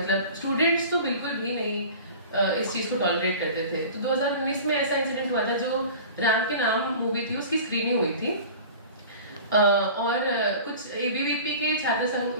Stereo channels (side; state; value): both; inverted; correlation -0.40